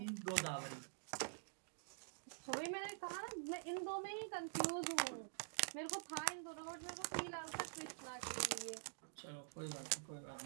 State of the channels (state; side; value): silent; left; digital silence